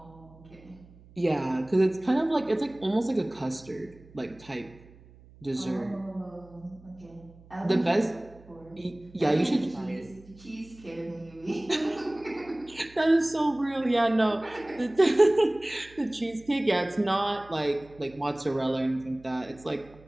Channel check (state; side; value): noise; right; hum, 23 dB below the sound